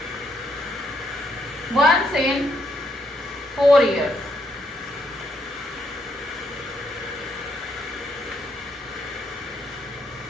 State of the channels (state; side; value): normal; both; correlation 0.75